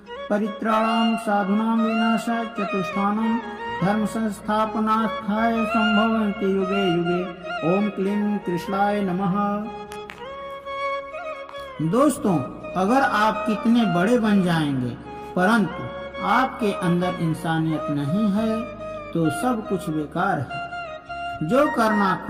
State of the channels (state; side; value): identical; both; correlation 1.00